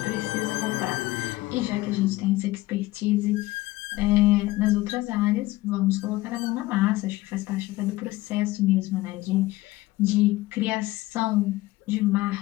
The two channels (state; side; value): quieter; right; 18.4 dB